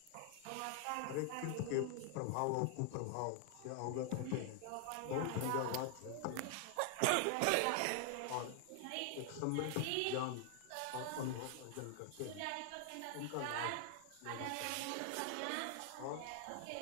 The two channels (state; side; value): different; both; correlation 0.00